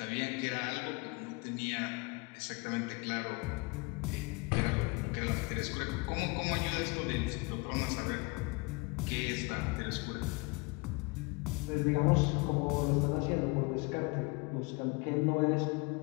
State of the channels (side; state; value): right; quieter; 28.4 dB